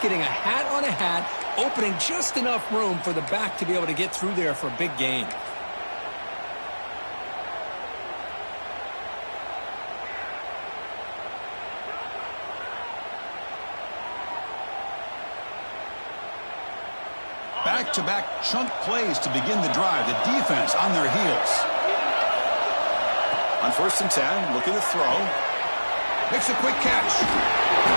getting a hat on a hat, opening just enough room for the back to be able to get through there for a big gain. Back-to-back chunk plays to begin the drive. The defense on their heels. On first and 10, looking to throw. Makes a quick catch.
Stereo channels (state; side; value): inverted; both; correlation -1.00